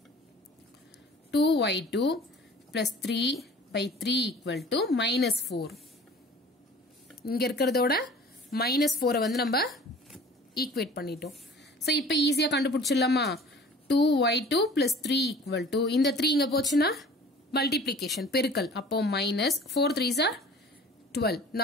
2y2 plus 3 by 3 equal to minus 4 இங்க இருக்கிறதோட minus 4 வந்து நம்ம ஈக்குவேட் பண்ணிட்டோம் சோ இப்போ ஈஸியா கண்டுபிடிச்சிடலாமா 2y2 plus 3 equal to இந்த 3 இங்க போச்சுன்னா மல்டிப்ளிகேஷன் பெருக்கல் அப்போ minus 4 3s are 12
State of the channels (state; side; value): normal; both; correlation 0.46